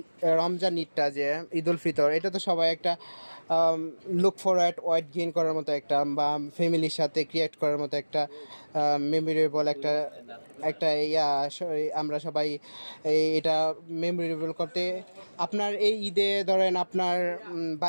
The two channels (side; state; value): both; inverted; correlation -1.00